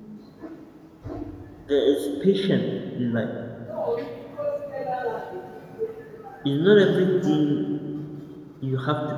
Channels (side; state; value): both; identical; correlation 1.00